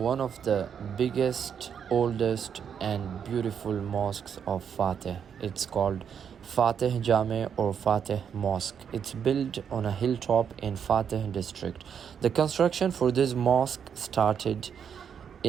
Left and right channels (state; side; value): quieter; left; 7.7 dB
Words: of the biggest, oldest and beautiful mosques of Fatih. It's called Fatih Camii or Fatih Mosque. It's built on a hilltop in Fatih district. The construction for this mosque started